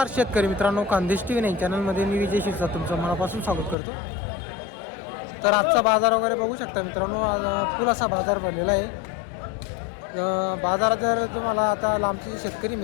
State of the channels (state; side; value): drops out; right; at 3.8 s